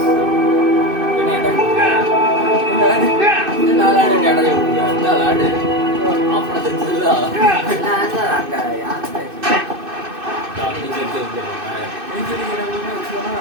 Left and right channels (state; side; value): late; left; 2.6 ms